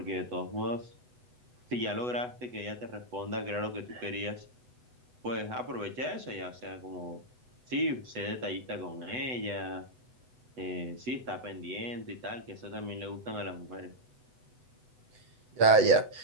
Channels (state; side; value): late; left; 8.0 ms